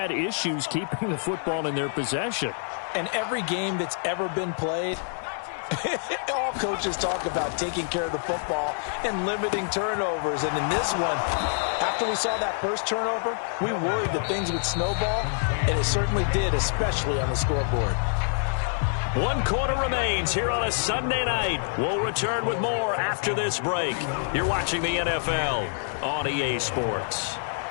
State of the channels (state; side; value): silent; right; digital silence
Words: issues keeping the football in their possession. And every game that's ever been played, all coaches talk about taking care of the football and limiting turnovers. And in this one, after we saw that first turnover, we worried that things would snowball, and it certainly did, especially on the scoreboard. 1 quarter remains here on a Sunday night. We'll return with more after this break. You're watching the NFL on EA Sports.